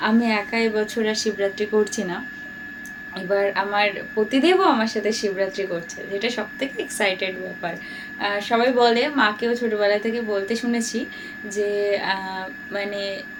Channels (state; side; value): identical; both; correlation 1.00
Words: আমি একা এবছর আর শিবরাত্রি করছি না, এবার আমার পতিদেবও আমার সাথে শিবরাত্রি করছে, যেটা সব থেকে এক্সাইটেড ব্যাপার। সবাই বলে, মাকেও ছোটোবেলা থেকে বলতে শুনেছি যে মানে